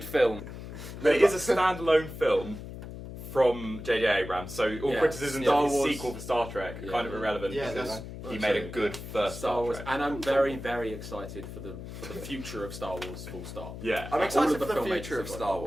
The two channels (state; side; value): noise; left; hum, 11 dB below the sound